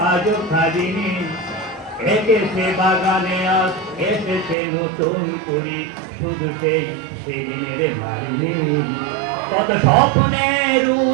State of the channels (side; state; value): left; drops out; at 4.5 s